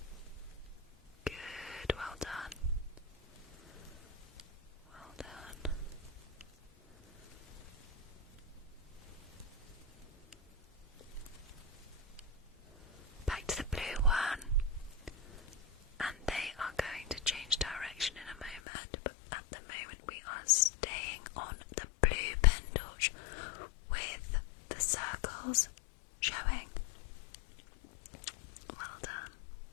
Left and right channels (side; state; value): right; drops out; at 18.6 s